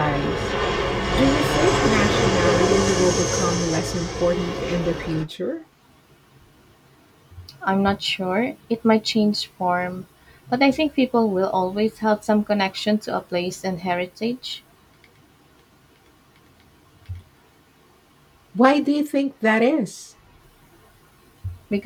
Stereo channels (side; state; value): both; identical; correlation 1.00